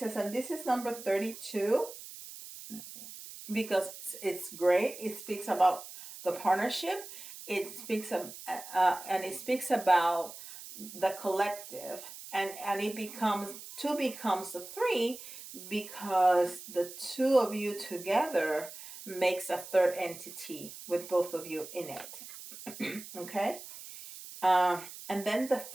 And this is number 32, because it's great. It speaks about the partnership. It speaks of, and it speaks about the collective, and it becomes two becomes a three, because the two of you together makes a third entity with both of you in it. Okay. And then the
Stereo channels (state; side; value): noise; right; hiss, 13 dB below the sound